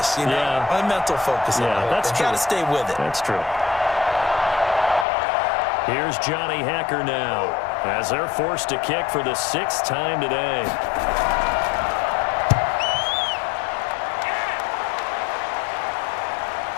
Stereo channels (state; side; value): drops out; right; at 5.1 s